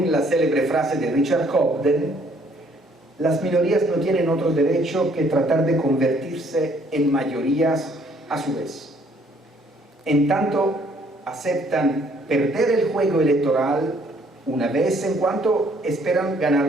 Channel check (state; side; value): normal; both; correlation 0.63